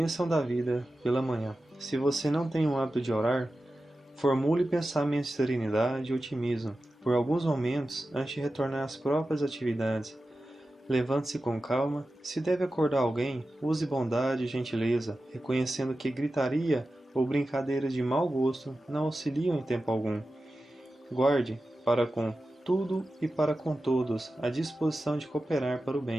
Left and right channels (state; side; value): normal; both; correlation 0.93